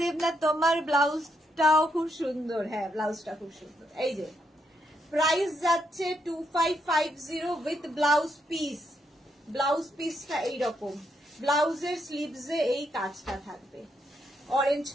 দেবনাথ তোমার ব্লাউজটাও খুব সুন্দর। হ্যাঁ ব্লাউজটা খুব সুন্দর। এই যে প্রাইস যাচ্ছে 2550 উইথ ব্লাউজ পিস। ব্লাউজ পিসটা এইরকম, ব্লাউজের স্লিভসে এই কাজটা থাকবে, orange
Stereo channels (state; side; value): normal; both; correlation 0.77